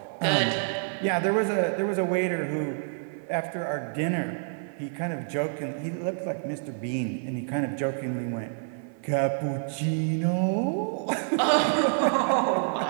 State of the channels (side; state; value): left; silent; 56 dB below the other